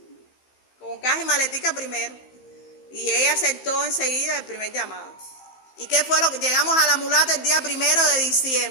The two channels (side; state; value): right; late; 15 ms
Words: Con caja y maletica primero. Y ella aceptó enseguida el primer llamado. ¿Y qué fue lo que llegamos a La Mulata el día 1 de